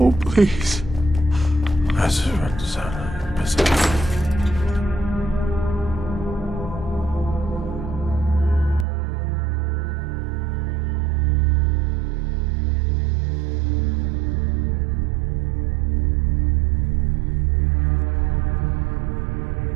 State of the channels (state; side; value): drops out; left; at 8.8 s